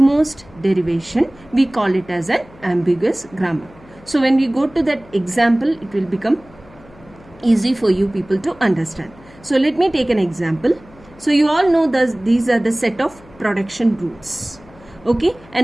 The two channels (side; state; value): left; noise; hum, 24 dB below the sound